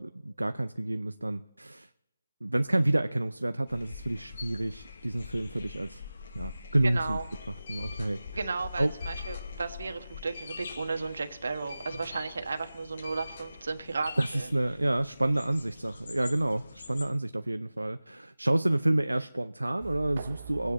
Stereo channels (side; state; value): both; inverted; correlation -0.97